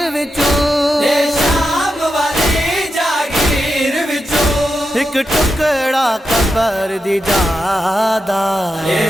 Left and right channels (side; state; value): both; normal; correlation 0.88